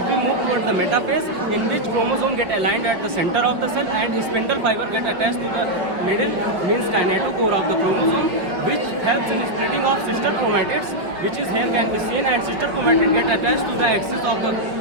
we move towards the metaphase, in which chromosome get aligned at the center of the cell and spindle fiber get attached to the middle, means kinetochore of the chromosome, which helps in splitting of sister chromatids, which is here can be seen, and sister chromatid get attached to the axis of the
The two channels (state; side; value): late; left; 5.1 ms